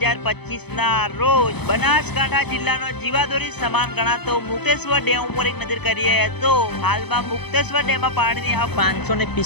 ના રોજ બનાસકાંઠા જિલ્લાનો જીવાદોરી સમાન ગણાતો મુક્તેશ્વર ડેમ ઉપર એક નજર કરીએ તો હાલમાં મુક્તેશ્વર ડેમમાં પાણીની આવક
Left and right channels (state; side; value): late; right; 0.98 ms